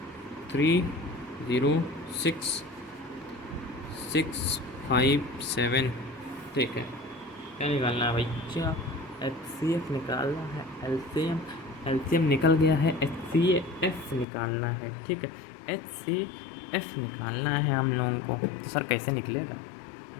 3 0 6 6 5 7। ठीक है, क्या निकालना है भैया, एचसीएफ निकालना है, एलसीएम निकल गया है, एचसीएफ निकालना है। ठीक है, एचसीएफ निकालना है हम लोगों को। तो सर कैसे निकलेगा,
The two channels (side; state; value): right; drops out; at 14.2 s